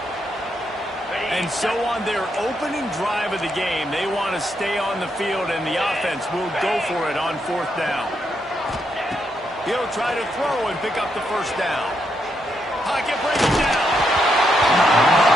And so on their opening drive of the game, they want to stay on the field, and the offense will go for it on 4th down. He'll try to throw and pick up the first down. Pocket breaking down.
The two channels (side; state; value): both; normal; correlation 0.79